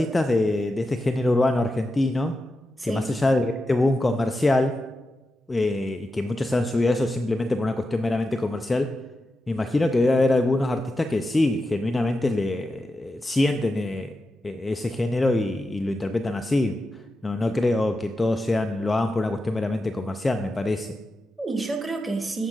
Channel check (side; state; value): both; normal; correlation 0.89